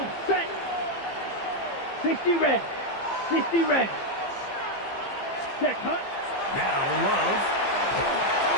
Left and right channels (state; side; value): late; right; 15 ms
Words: set. 60 red. 60 red. Set, hut. Now Love.